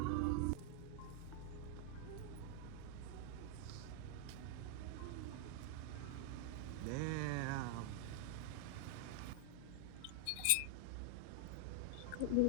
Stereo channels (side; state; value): both; different; correlation 0.00